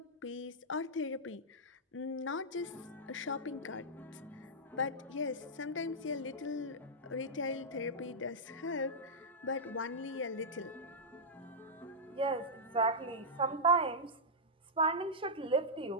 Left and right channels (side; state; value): both; normal; correlation -0.08